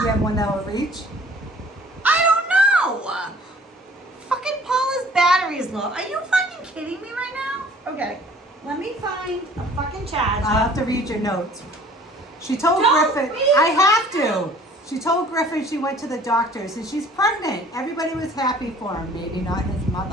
you have one that will reach? I don't know. Fucking Paula's battery is low. Are you fucking kidding me right now? Okay, let me find a fucking charger. I'll have to read your notes. She told Don't Griffin. read I have to. She told Griffin she went to the doctors and she's pregnant. Everybody was happy for him. Maybe not his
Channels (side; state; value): both; normal; correlation 0.52